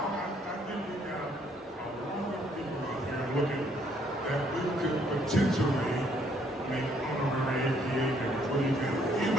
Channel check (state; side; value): normal; both; correlation 0.67